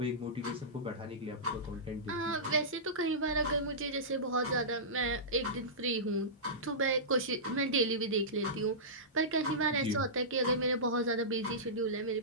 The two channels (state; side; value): normal; both; correlation -0.18